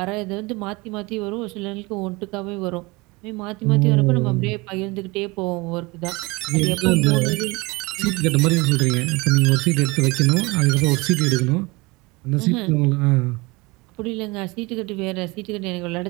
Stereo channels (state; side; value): quieter; left; 24.4 dB